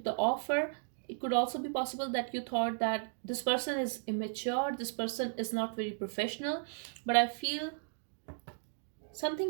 the offer. It could also be possible that you thought that this person is immature, this person is not very professional. But I feel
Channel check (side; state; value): left; silent; digital silence